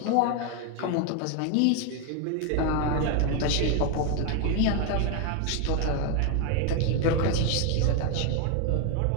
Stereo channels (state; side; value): different; both; correlation 0.01